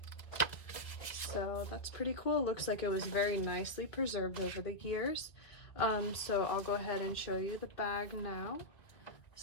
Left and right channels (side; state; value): right; late; 2.1 ms